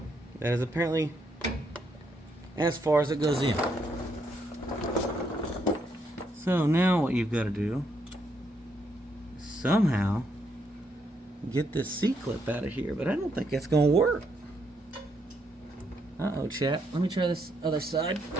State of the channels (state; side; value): normal; both; correlation 0.76